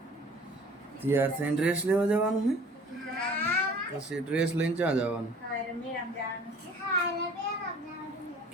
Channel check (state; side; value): normal; both; correlation 0.49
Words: તૈયાર થઈને ડ્રેસ લેવા જવાનું છે? પછી ડ્રેસ લઈને ક્યાં જવાનું?